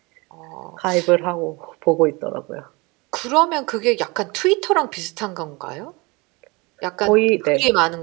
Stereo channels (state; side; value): quieter; left; 26.2 dB